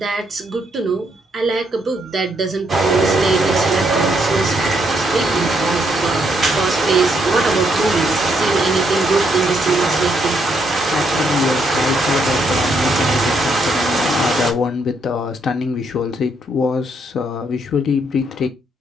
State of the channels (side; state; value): both; normal; correlation 0.75